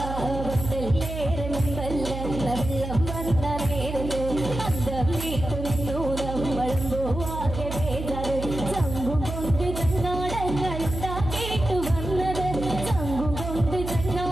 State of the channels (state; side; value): noise; right; hum, 6 dB below the sound